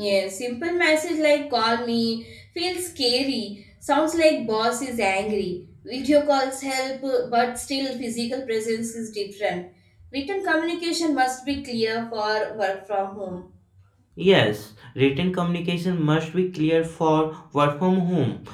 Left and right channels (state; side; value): identical; both; correlation 1.00